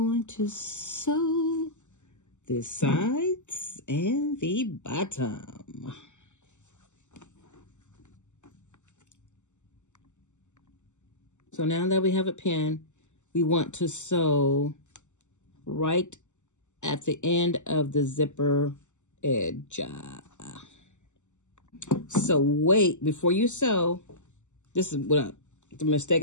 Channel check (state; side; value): late; right; 0.84 ms